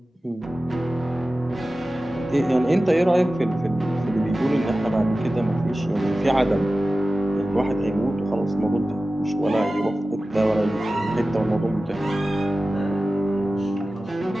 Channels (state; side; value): normal; both; correlation 0.95